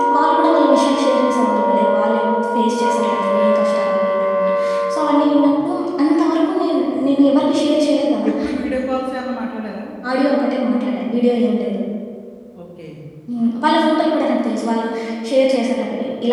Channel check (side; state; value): both; identical; correlation 1.00